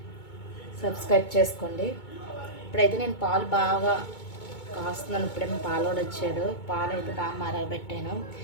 సబ్స్క్రైబ్ చేసుకోండి. ఇప్పుడైతే నేను పాలు బాగా కాస్తున్నాను. ఇప్పుడే పాలోడు వచ్చాడు. పాలు అయితే బాగా మరగబెట్టాను.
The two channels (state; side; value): late; right; 2.2 ms